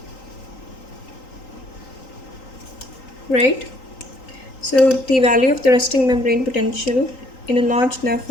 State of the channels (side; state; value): right; late; 3.9 ms